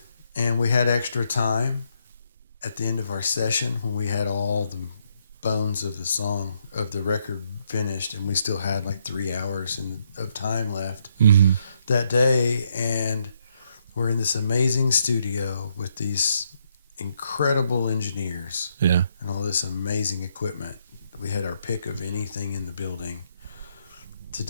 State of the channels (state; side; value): inverted; both; correlation -0.75